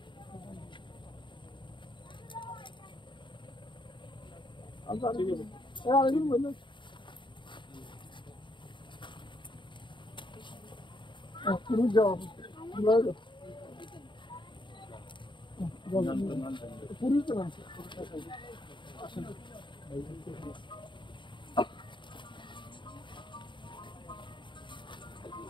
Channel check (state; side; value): late; right; 0.23 ms